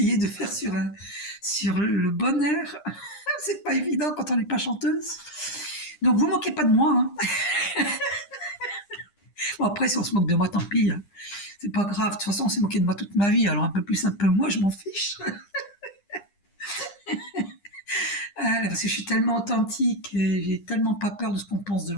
de faire sur le bon air. C'est pas évident quand on n'est pas chanteuse. Donc vous moquez pas de moi. Hein. Bon, après, si on se moque de moi, tant pis. Hein. C'est pas grave. De toute façon, on s'est moqué de moi toute ma vie. Alors un peu plus, un peu moins, je m'en fiche. Parce que je suis tellement authentique et j'ai tellement pas peur de ce qu'on pense de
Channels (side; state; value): right; late; 10 ms